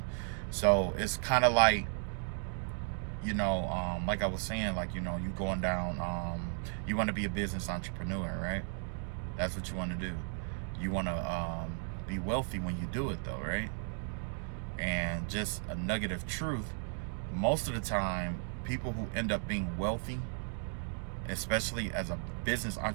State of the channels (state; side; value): silent; left; 54 dB below the other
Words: So it's kind of like, you know, like I was saying, like, you know, you going down, you want to be a business entrepreneur, right? That's what you want to do. You want to be wealthy when you do it, though, right? And just a nugget of truth, most of the time, people who end up being wealthy, especially as a business